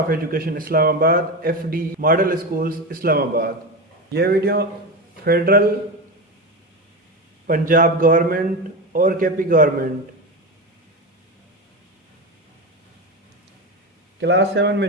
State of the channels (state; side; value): normal; both; correlation 0.19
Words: Education Islamabad FD Model Schools Islamabad. यह video federal Punjab government और KP government class 7